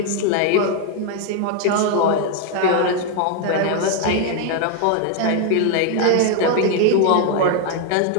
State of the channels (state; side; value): different; both; correlation 0.01